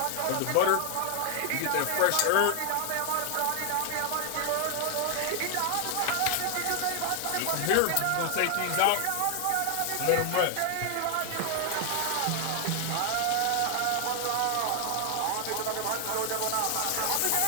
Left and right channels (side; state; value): both; different; correlation 0.00